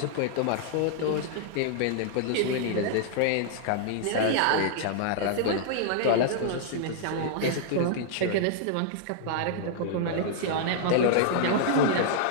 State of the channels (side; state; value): both; different; correlation -0.01